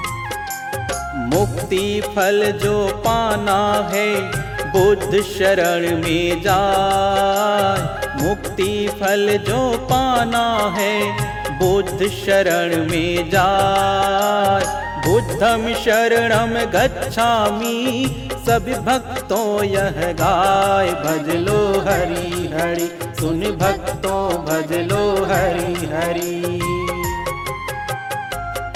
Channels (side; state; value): both; identical; correlation 1.00